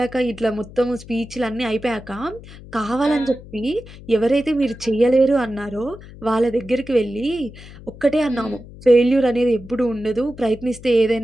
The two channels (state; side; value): noise; left; hum, 17 dB below the sound